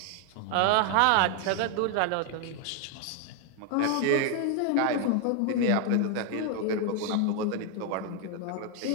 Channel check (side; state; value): both; different; correlation 0.00